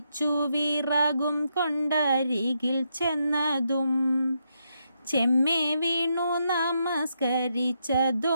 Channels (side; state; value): both; inverted; correlation -0.80